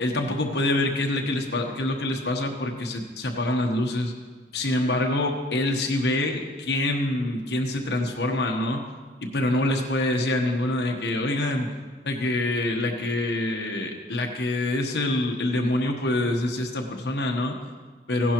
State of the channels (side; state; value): both; normal; correlation 0.55